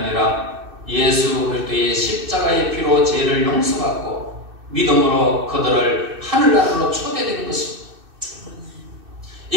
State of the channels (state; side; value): late; left; 2.6 ms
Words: 예수 그리스도의 십자가의 피로 죄를 용서받고 믿음으로 그들을 하늘나라로 초대되는 것입니다.